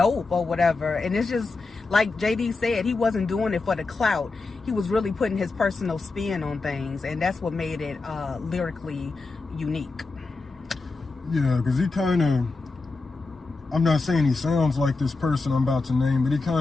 or whatever. And it's just like JD said, he wasn't doing it for the clout. He was really putting his personal spin on things, and that's what made it lyrically unique. Yeah, because he kind of, I'm not saying he sounds like this person I'm about to name, but he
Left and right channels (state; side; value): quieter; right; 3.8 dB